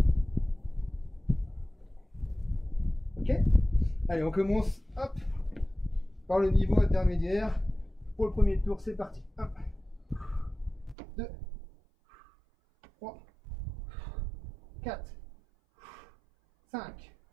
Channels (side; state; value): left; drops out; at 11.0 s